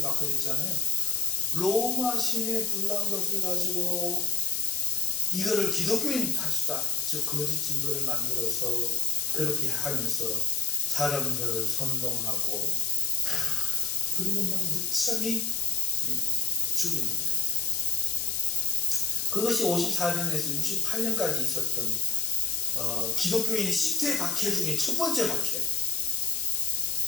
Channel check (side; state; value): left; noise; hiss, 1 dB below the sound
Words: 그랬잖아요. 로마 시내 불난 것을 가지고 이거를 기독교인 탓이다. 즉 거짓 증거를 만들어서 그렇게 하면서 사람들을 선동하고 그리고 막 무참히 죽이는 거예요. 그것이 54년에서 68년까지 있었던 기독교인의 10대 박해 중에 첫 번째 박해.